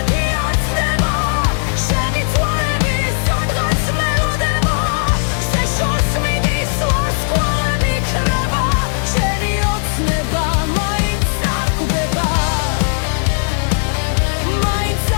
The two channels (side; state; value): right; silent; digital silence